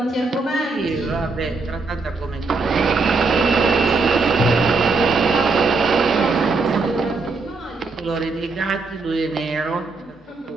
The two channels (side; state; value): left; quieter; 3.9 dB